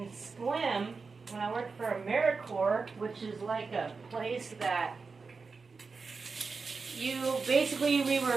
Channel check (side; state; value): left; quieter; 4.6 dB